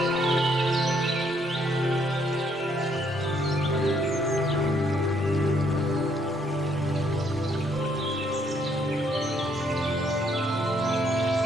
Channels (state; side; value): normal; both; correlation 0.69